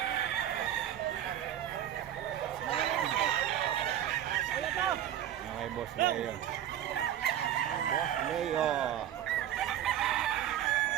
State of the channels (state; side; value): quieter; left; 11.0 dB